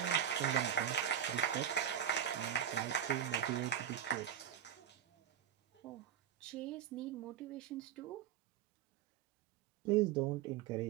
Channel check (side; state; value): left; quieter; 9.6 dB